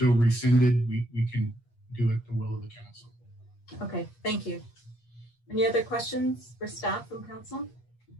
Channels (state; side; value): late; right; 8.4 ms